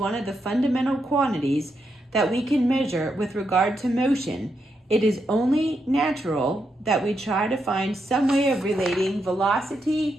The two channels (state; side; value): normal; both; correlation 0.82